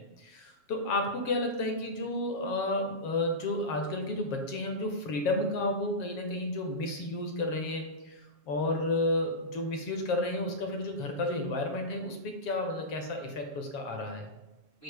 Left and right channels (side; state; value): right; late; 7.3 ms